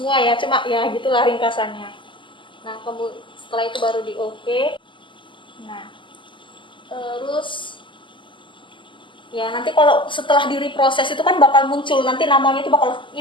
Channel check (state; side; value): late; right; 0.24 ms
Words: ya, cuma ya gitulah ringkasannya. Nah, setelah itu baru di OK. Nah, terus ya nanti kalau setelah direproses itu kan bakal muncul, nanti namanya